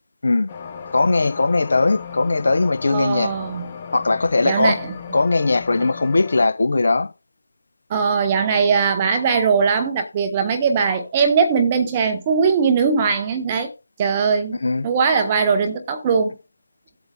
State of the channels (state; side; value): inverted; both; correlation -0.77